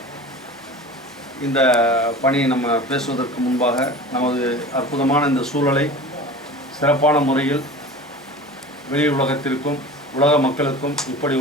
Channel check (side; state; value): both; normal; correlation 0.36